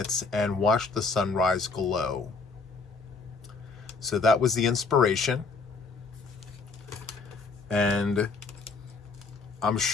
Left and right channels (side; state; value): right; quieter; 4.3 dB